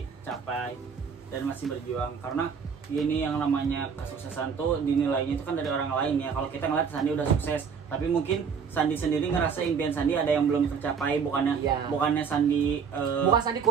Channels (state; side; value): quieter; left; 6.2 dB